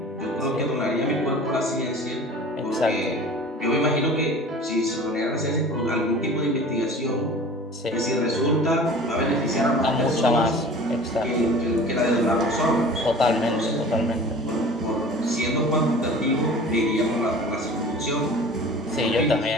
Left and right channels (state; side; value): normal; both; correlation 0.41